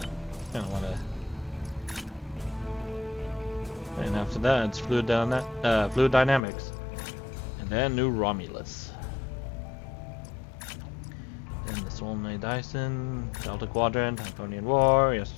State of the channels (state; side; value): drops out; right; at 6.4 s